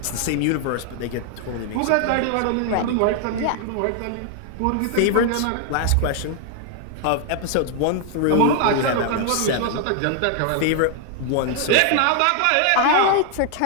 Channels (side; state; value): both; different; correlation 0.00